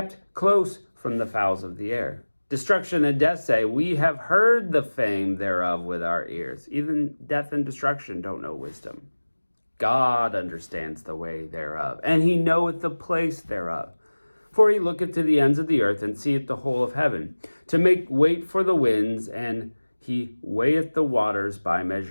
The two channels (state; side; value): inverted; both; correlation -1.00